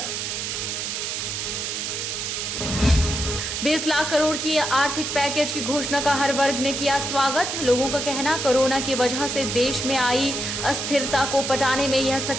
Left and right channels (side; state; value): right; noise; hiss, 3 dB below the sound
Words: 20 लाख करोड़ की आर्थिक पैकेज की घोषणा का हर वर्ग ने किया स्वागत। लोगों का कहना कोरोना की वजह से देश में आई अस्थिरता को पटाने में यह